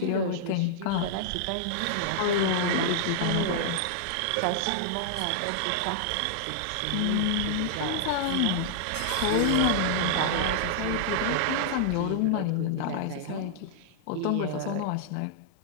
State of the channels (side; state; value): both; different; correlation -0.01